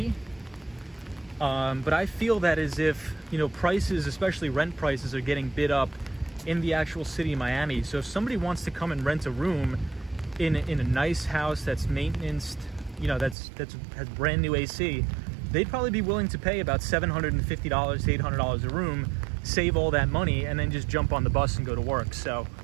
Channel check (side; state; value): left; drops out; at 13.4 s